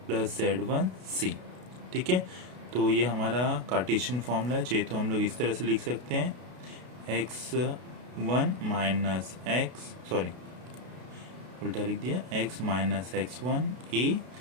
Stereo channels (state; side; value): late; left; 32 ms